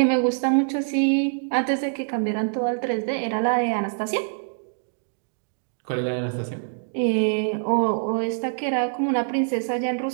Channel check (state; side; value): silent; left; digital silence